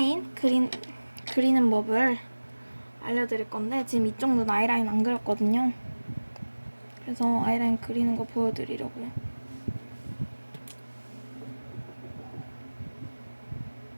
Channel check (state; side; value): inverted; both; correlation -1.00